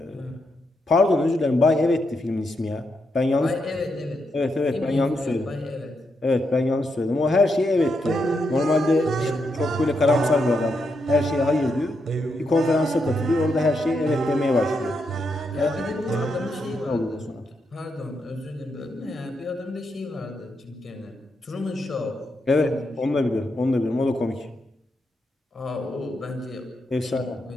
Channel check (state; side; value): normal; both; correlation 0.82